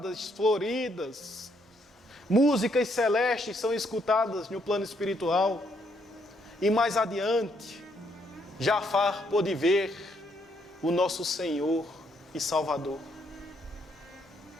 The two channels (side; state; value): both; normal; correlation 0.72